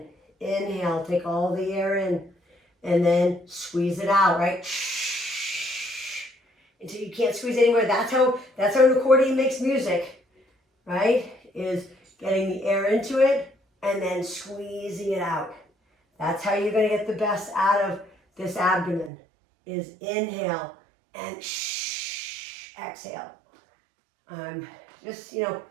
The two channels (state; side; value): drops out; left; at 19.1 s